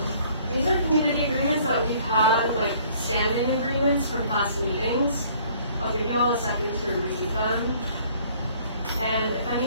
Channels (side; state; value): both; inverted; correlation -0.58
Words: These are community agreements that we've had, like standing agreements from past meetings. I'll give you all a second to read them. And if